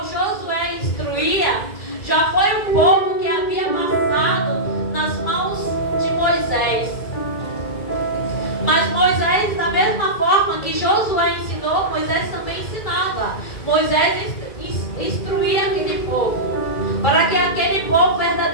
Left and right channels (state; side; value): late; right; 2.3 ms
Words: Josué instruía, já foi um povo que havia passado nas mãos de Moisés. Mas Moisés, da mesma forma que Josué ensinou, Moisés também ensinava. Moisés instruía aquele povo, para que aquele povo